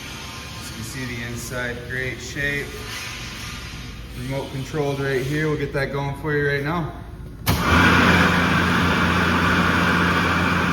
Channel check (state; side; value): identical; both; correlation 1.00